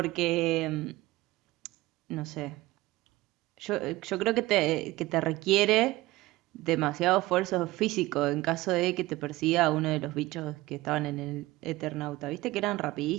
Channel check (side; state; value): left; quieter; 18.9 dB